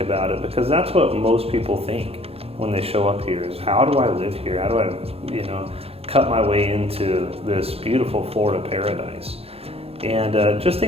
about it, because that's what most people think when they show up here is, how do I live here? How do I, cut my way into this beautiful Florida paradise? And just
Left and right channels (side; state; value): left; late; 0.29 ms